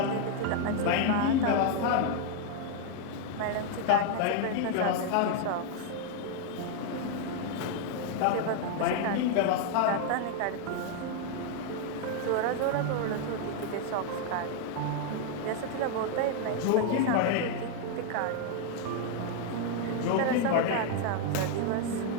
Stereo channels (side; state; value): both; different; correlation 0.01